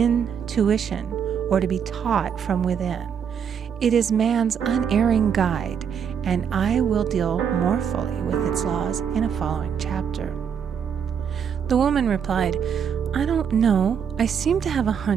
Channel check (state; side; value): quieter; left; 7.5 dB